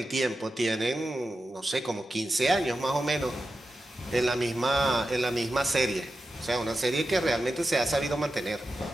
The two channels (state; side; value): normal; both; correlation 0.91